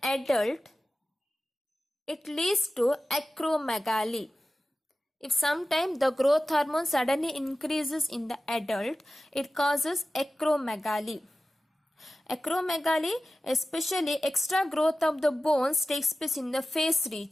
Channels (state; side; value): normal; both; correlation 0.95